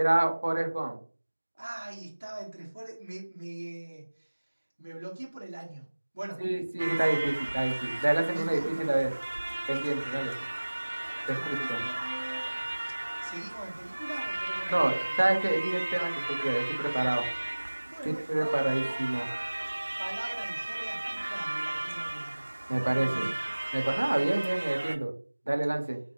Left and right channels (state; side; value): inverted; both; correlation -1.00